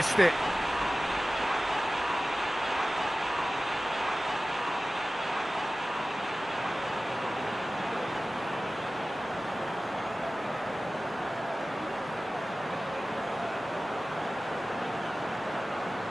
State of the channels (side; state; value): both; normal; correlation 0.96